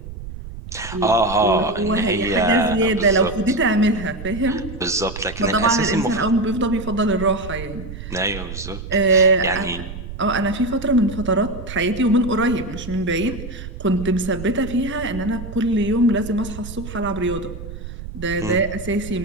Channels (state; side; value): noise; right; rumble, 11 dB below the sound